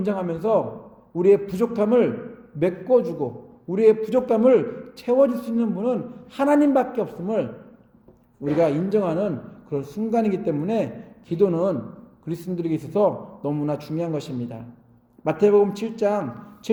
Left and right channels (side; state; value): both; identical; correlation 1.00